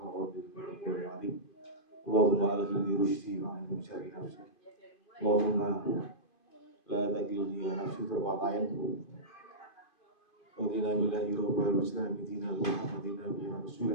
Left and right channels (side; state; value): right; late; 2.4 ms